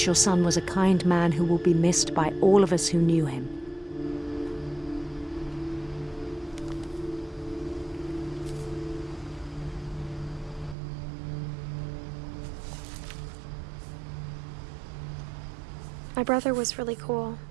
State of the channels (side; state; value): left; drops out; at 10.8 s